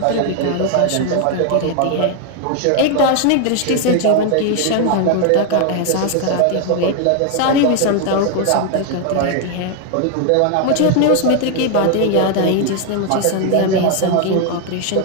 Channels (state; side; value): different; both; correlation 0.00